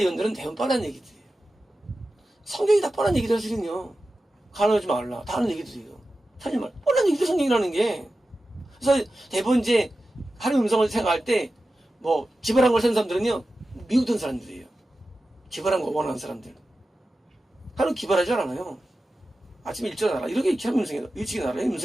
대부분 뻔한 얘기들이에요. 성경이 다 뻔한 얘기들 하시는요. 가능하지 말라. 다 하는 얘기들이에요. 사실 말 뻔한 얘기들 성경이라는 게. 그래서 대부분 이제 하나님 음성을 생각할 때 뭐 기발한 걸 쓰는 사람들은요, 미국 돈 사람들이에요. 기발한 거 원하는 사람들. 하나님 기발하지 않아요. 아침에 일찍 나라. 이렇게 하면 음성이에요. 일찍 나라.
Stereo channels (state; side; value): normal; both; correlation 0.93